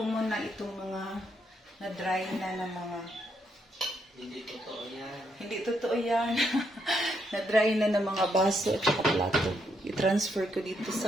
muna itong mga na-dry na ng mga... Hindi totoo yan. Hindi totoo yan. Na-dry na ng mga baso at saka plato. I-transfer ko dito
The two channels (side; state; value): both; normal; correlation 0.77